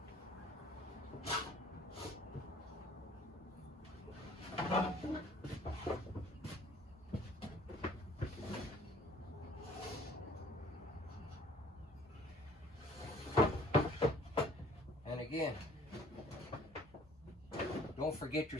And again, don't forget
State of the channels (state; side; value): normal; both; correlation 0.54